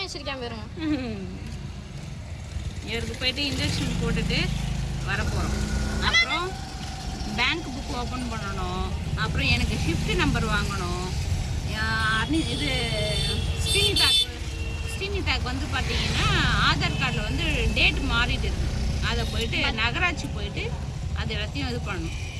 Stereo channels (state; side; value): identical; both; correlation 1.00